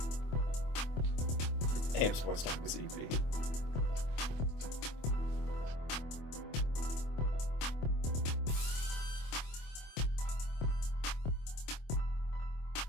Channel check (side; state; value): right; late; 25 ms